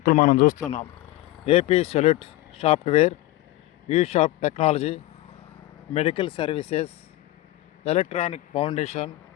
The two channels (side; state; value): right; quieter; 16.8 dB